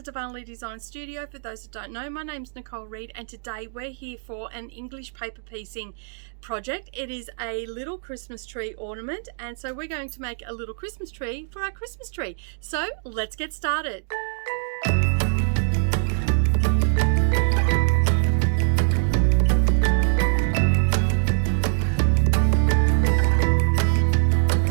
Darvanalee Designs Studio. For those that don't know, my name's Nicole Reed and today we're here for an English paper piecing project. It is a little Christmas tree ornament, and so we're going to make a little Christmas tree for our Christmas tree. So let's get started.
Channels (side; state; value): left; silent; digital silence